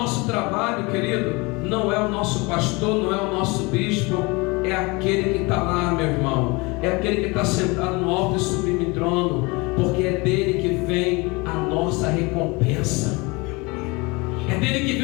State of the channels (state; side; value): quieter; right; 26.1 dB